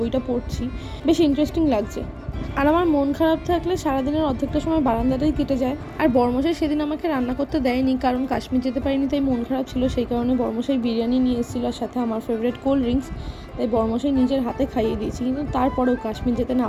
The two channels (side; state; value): both; identical; correlation 1.00